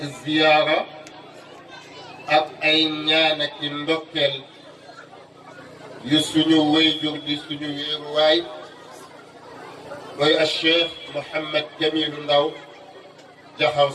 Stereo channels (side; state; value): both; identical; correlation 1.00